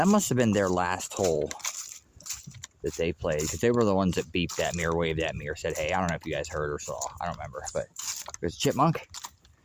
must have been their last hole that they played, because they were the ones that beeped at me or waved at me or said, hey, I don't know if you guys heard or saw. I don't remember, but there's a chipmunk.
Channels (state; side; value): identical; both; correlation 1.00